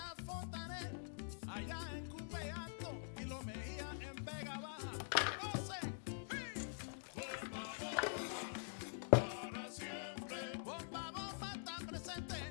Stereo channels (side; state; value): right; silent; digital silence